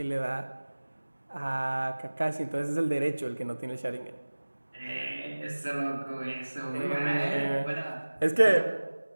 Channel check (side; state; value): both; inverted; correlation -1.00